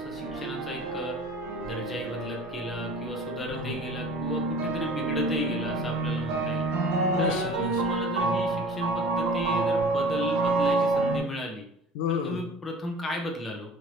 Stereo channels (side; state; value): both; normal; correlation 0.44